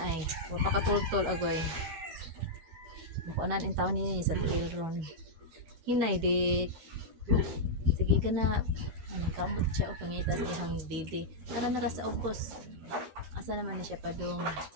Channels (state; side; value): late; left; 12 ms